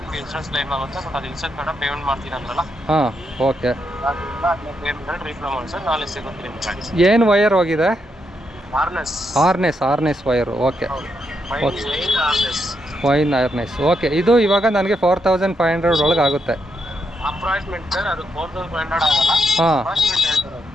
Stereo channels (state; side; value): normal; both; correlation 0.80